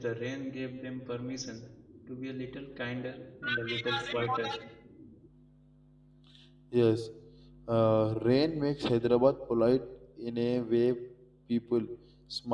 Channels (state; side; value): identical; both; correlation 1.00